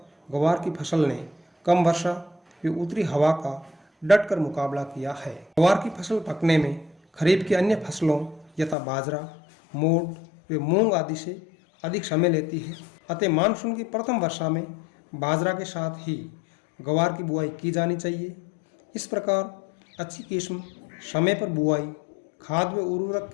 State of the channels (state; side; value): drops out; right; at 8.8 s